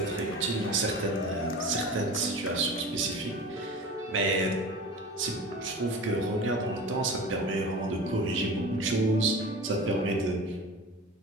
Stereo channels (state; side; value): normal; both; correlation 0.35